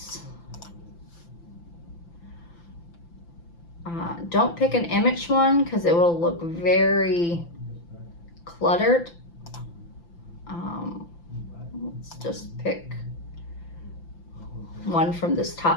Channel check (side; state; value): right; late; 5.9 ms